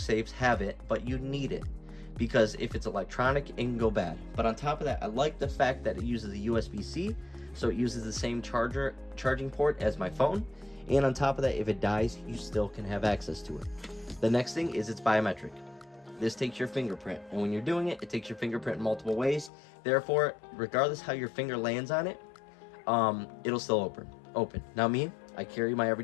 have it, but you need it because if it's electronic, it can go bad. But on top of that, I like the fact that it uses a USB-C, so it uses the same charging port as my phone. And on top of that, if it dies, you still can have access to it. The next thing is it's biometric. This takes your fingerprint, and when you're doing it, it takes your fingerprint in multiple ways. Therefore, regardless how your finger lands on it, it'll still open. Now me, I carry my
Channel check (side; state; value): right; drops out; at 19.5 s